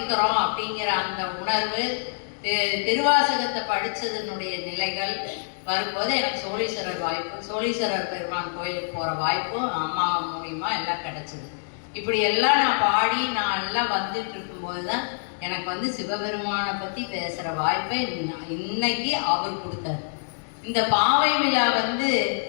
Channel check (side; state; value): right; silent; digital silence